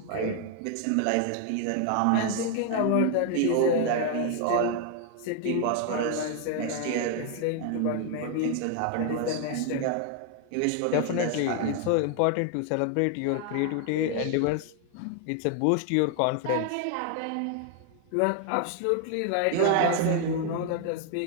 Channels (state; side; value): different; both; correlation 0.00